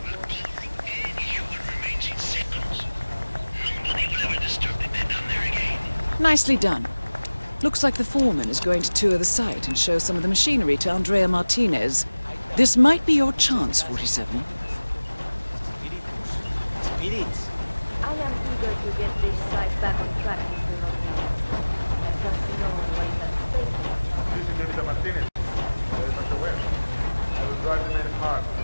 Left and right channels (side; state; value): both; inverted; correlation -1.00